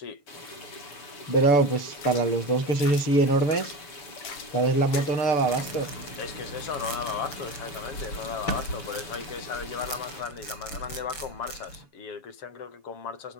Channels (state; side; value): late; right; 6.9 ms